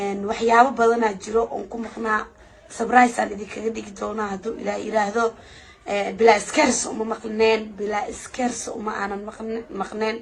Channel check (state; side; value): identical; both; correlation 1.00